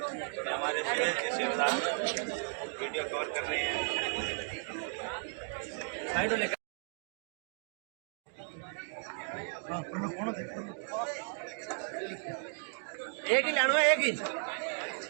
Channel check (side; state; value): left; silent; 54 dB below the other